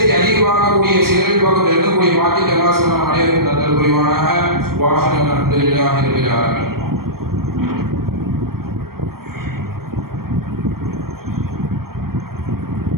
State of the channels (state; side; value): late; left; 0.94 ms